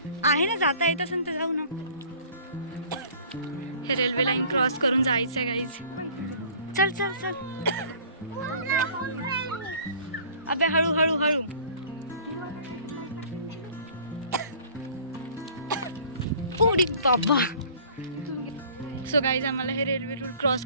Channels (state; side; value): inverted; both; correlation -0.49